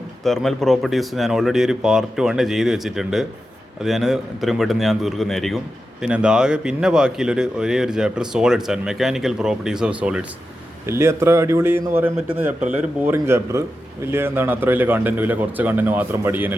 തെർമൽ പ്രോപ്പർട്ടീസും ഞാൻ ഓൾറെഡി ഒരു പാർട്ട് 1 ചെയ്ത് വെച്ചിട്ടുണ്ട്. അത് ഞാൻ ഇത്രയും പെട്ടെന്ന് ഞാൻ തീർക്കുന്നതായിരിക്കും. പിന്നെ ആകെ പിന്നെ ബാക്കിയുള്ളൊരു ഒരേ ഒരു chapter solids and mechanical properties of solids. വലിയ അത്ര അടിപൊളി എന്ന് പറയാൻ പറ്റുന്ന ചാപ്റ്റർ അല്ല, ഒരു ബോറിംഗ് ചാപ്റ്റർ. അത്ര വലിയ കണ്ടൻറ്റും ഇല്ല, കുറച്ച് കണ്ടൻറ്റ് മാത്രം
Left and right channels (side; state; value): both; normal; correlation 0.90